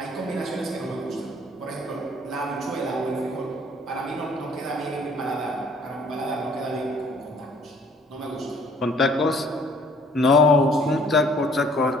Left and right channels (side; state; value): both; normal; correlation 0.58